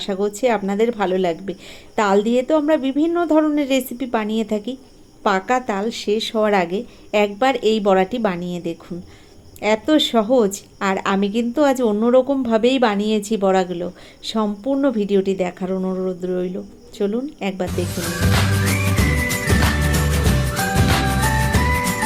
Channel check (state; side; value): identical; both; correlation 1.00